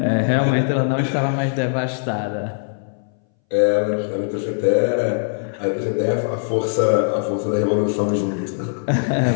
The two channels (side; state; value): right; silent; 63 dB below the other